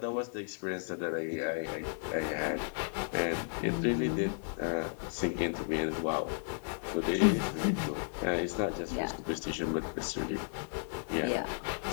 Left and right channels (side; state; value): right; silent; 55 dB below the other